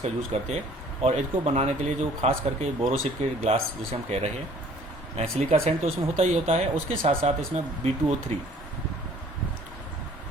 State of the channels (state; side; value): normal; both; correlation 0.54